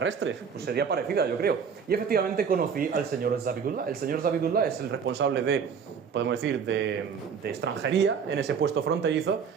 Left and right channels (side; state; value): left; quieter; 6.6 dB